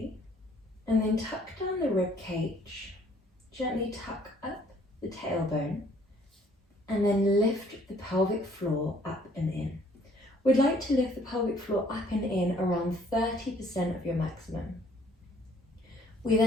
and then tuck down the rib cage. Gently tuck up the tailbone and then lift the pelvic floor up and in. We'd like to lift the pelvic floor up and in around 30% of your maximum. We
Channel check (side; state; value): both; normal; correlation 0.60